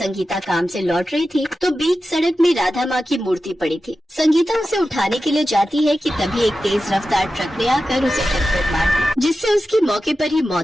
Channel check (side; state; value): both; normal; correlation 0.93